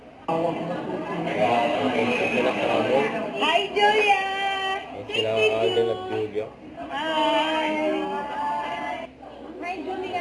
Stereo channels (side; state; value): both; identical; correlation 1.00